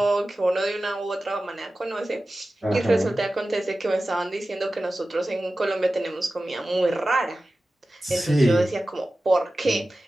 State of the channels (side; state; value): both; normal; correlation 0.95